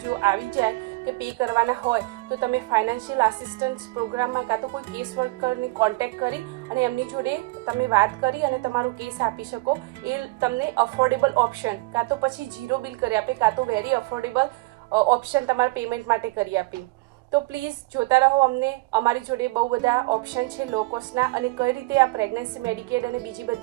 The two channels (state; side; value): quieter; left; 23.8 dB